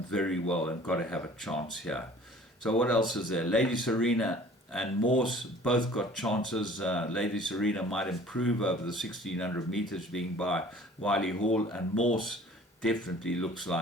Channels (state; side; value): normal; both; correlation 0.49